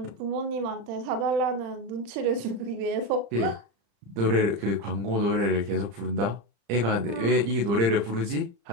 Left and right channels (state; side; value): late; left; 35 ms